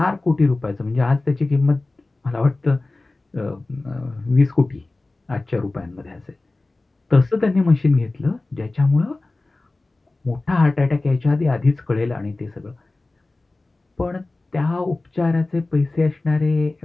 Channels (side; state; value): right; quieter; 3.1 dB